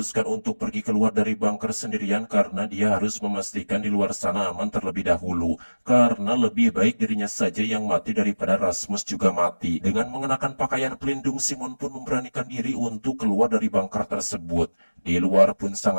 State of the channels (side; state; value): both; inverted; correlation -1.00